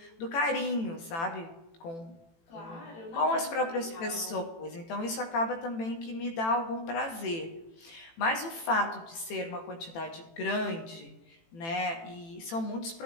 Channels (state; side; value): late; right; 18 ms